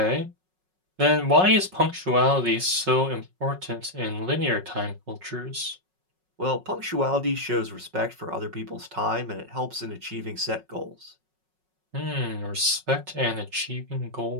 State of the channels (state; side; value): late; left; 5.4 ms